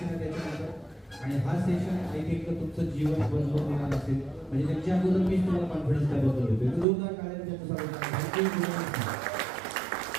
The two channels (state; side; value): drops out; left; at 6.9 s